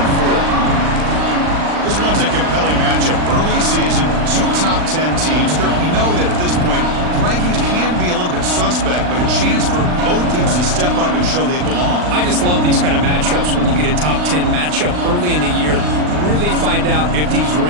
4. This one's a compelling matchup. Early season, 2 top 10 teams. Kirk, we know that at this point, rankings can be a little bit suspect, but a chance for both teams to step up and show they belong. I just love these kind of matchups when you get a top 10 matchup early in the year. Really find out if these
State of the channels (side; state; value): left; late; 39 ms